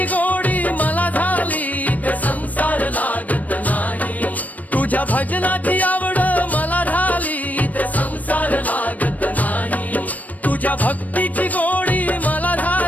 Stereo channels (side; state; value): right; late; 0.075 ms